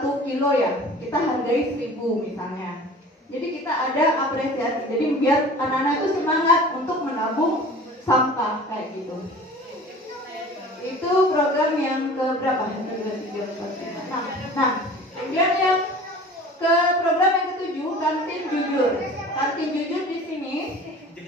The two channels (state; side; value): normal; both; correlation 0.43